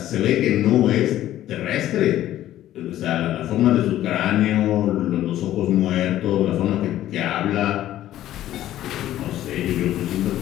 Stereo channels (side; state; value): right; quieter; 13.2 dB